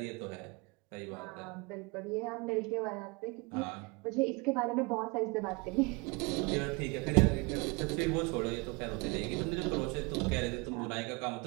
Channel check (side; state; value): left; quieter; 27.8 dB